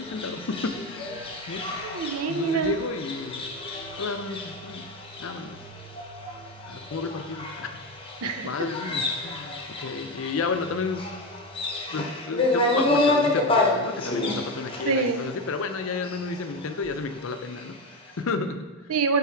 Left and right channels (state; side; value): normal; both; correlation 0.15